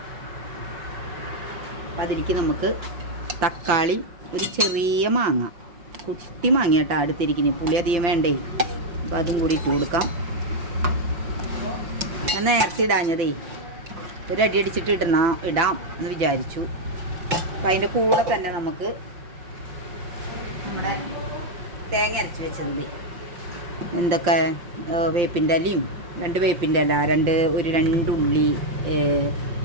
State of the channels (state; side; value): late; left; 5.5 ms